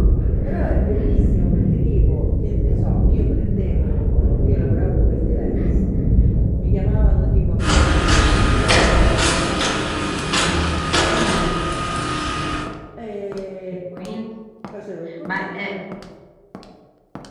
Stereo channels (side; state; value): both; identical; correlation 1.00